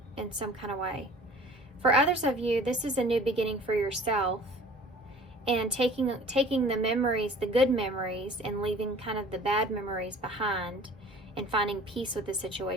in some kind of way. For others of you, this is a new beginning for yourself, and taking the memories, the good memories, and leaving kind of the bad memories behind, and finding peace with the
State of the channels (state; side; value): normal; both; correlation 0.47